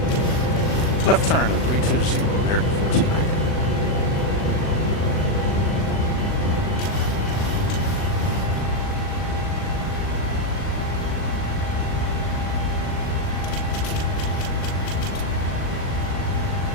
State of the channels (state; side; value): late; right; 39 ms